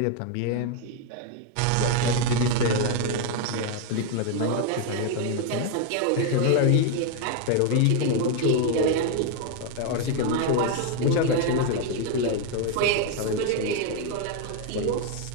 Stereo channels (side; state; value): both; different; correlation 0.01